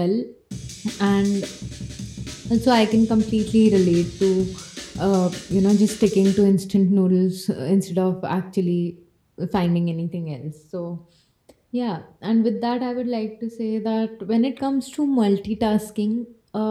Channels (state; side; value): identical; both; correlation 1.00